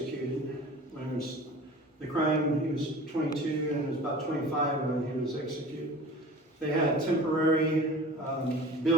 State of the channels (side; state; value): both; normal; correlation 0.40